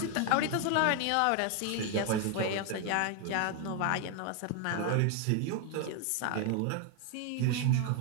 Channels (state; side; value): different; both; correlation 0.01